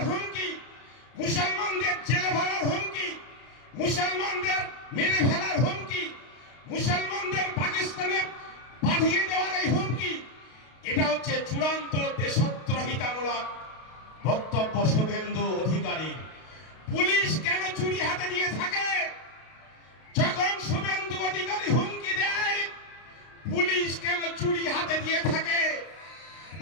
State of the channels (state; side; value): late; right; 32 ms